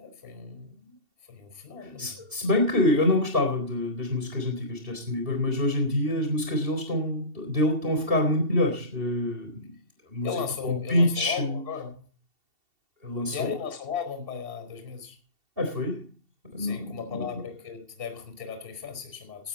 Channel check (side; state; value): left; late; 2.7 ms